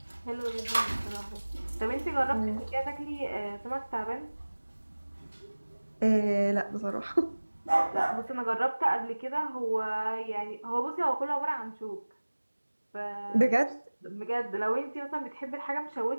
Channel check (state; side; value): inverted; both; correlation -1.00